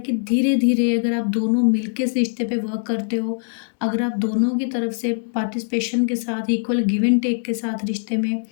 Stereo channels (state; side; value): silent; right; digital silence